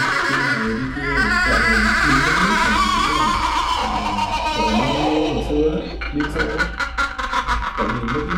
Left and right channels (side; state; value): both; identical; correlation 1.00